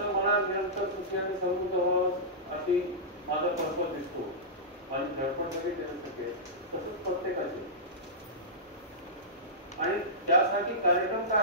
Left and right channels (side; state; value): both; normal; correlation -0.16